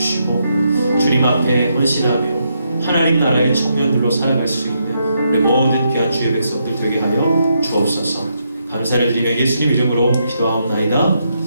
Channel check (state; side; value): inverted; both; correlation -0.79